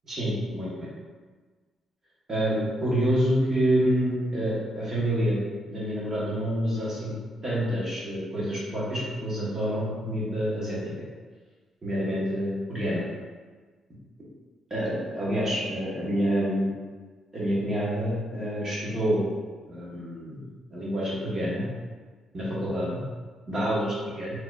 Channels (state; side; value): normal; both; correlation 0.77